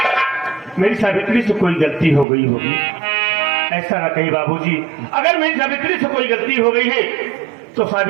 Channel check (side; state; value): left; drops out; at 2.2 s